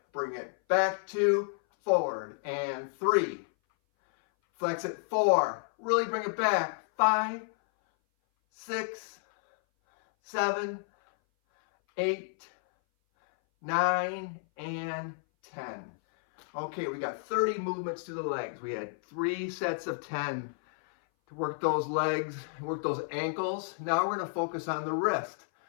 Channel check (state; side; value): silent; right; 57 dB below the other